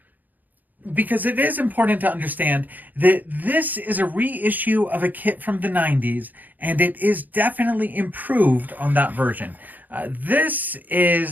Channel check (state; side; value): late; left; 0.084 ms